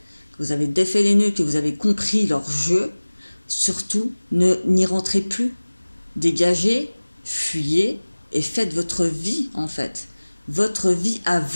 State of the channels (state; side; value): inverted; both; correlation -1.00